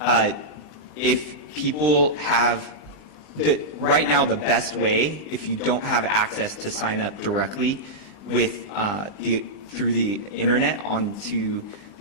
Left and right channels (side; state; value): right; late; 20 ms